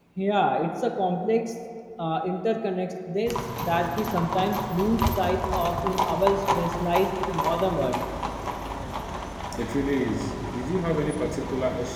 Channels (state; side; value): identical; both; correlation 1.00